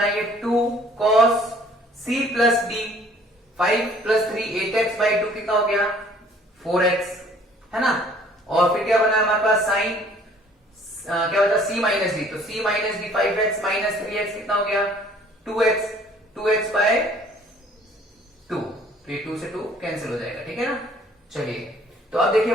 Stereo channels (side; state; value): both; normal; correlation 0.56